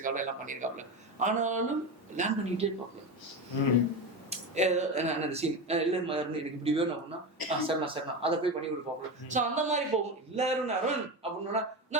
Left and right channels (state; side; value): normal; both; correlation 0.20